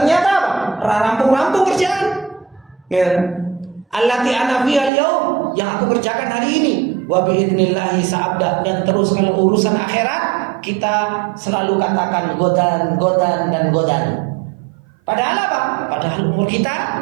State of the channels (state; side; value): drops out; left; at 4.9 s